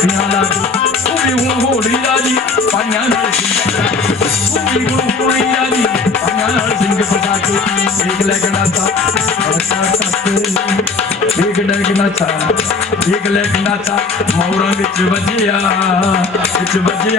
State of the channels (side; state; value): right; quieter; 4.2 dB